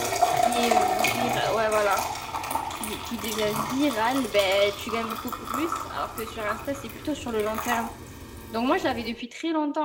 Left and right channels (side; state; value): both; identical; correlation 1.00